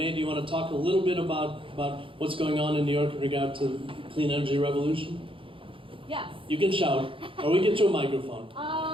do you want to talk a little bit about what's going on in New York in regard to the clean energy revolution? Yes. You can shout, or we get you a microphone.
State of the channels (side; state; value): left; late; 0.25 ms